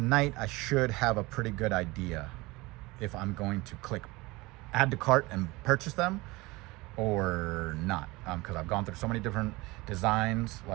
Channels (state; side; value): quieter; left; 22.2 dB